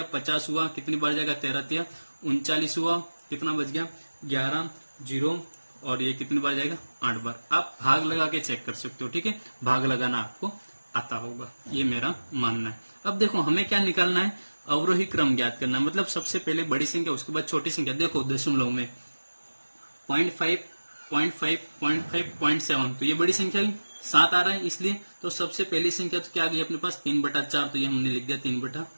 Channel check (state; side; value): inverted; both; correlation -1.00